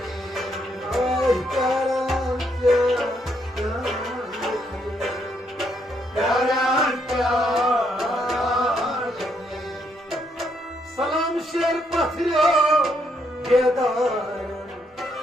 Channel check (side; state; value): both; normal; correlation 0.74